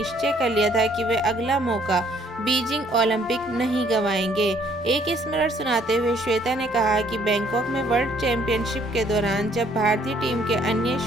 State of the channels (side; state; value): both; normal; correlation 0.63